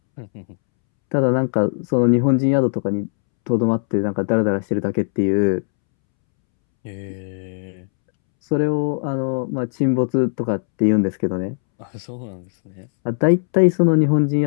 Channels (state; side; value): silent; right; 66 dB below the other